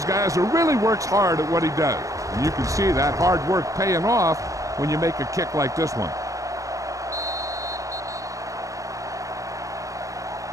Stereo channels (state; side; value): late; left; 0.16 ms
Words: guys who really works hard at what he does. And you can see that hard work paying off when you make a kick like this one.